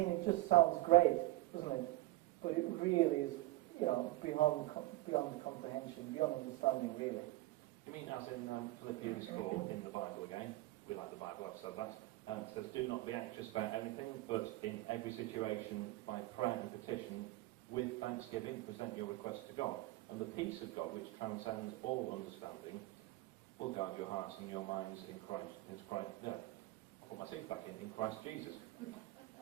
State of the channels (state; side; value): quieter; left; 18.6 dB